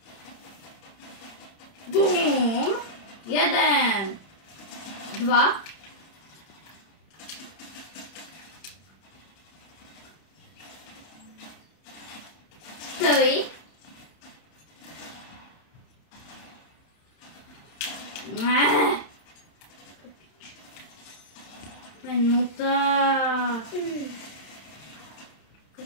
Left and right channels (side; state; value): right; late; 31 ms